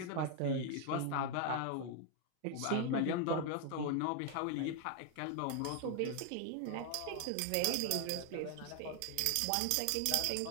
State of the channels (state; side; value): different; both; correlation 0.00